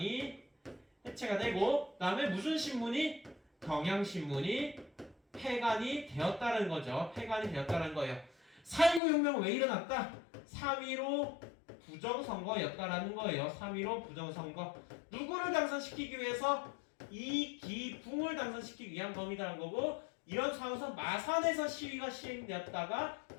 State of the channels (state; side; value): drops out; right; at 9.0 s